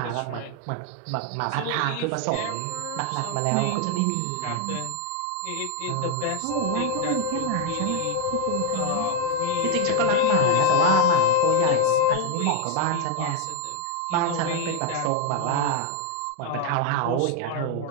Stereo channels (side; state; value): both; different; correlation 0.01